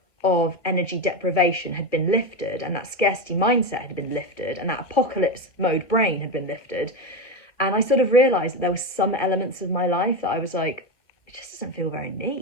of energy deprivation had been lifted, and that scarcity mindset had been lifted, and that apocalypse mode brain had been lifted. And I sort of realized that there were some elements of my life that I was like, it just doesn't feel very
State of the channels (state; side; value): late; right; 1.9 ms